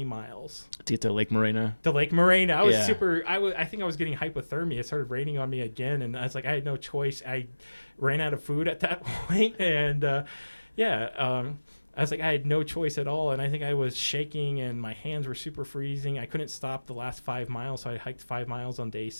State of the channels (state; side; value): inverted; both; correlation -1.00